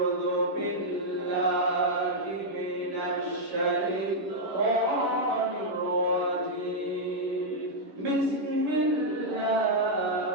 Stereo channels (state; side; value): late; left; 10 ms